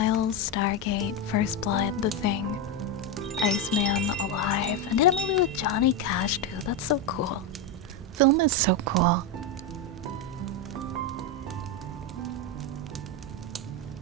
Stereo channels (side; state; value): both; normal; correlation 0.08